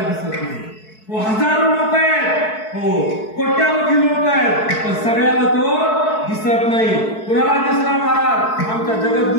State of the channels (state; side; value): late; right; 4.6 ms